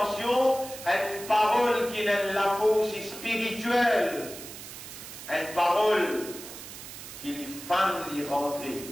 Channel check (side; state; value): right; noise; hiss, 13 dB below the sound